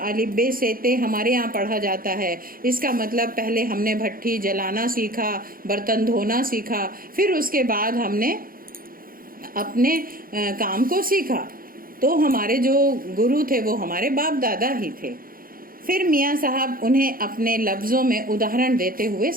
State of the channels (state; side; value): late; left; 0.42 ms